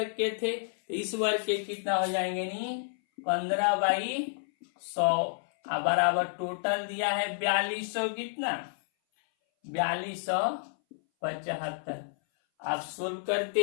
के थे, तो इस वर्ग के कितना हो जाएंगे, नहीं 15/100 बराबर टोटल दिया है 4200, कितना 4275। आप सोल्व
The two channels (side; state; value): right; silent; 58 dB below the other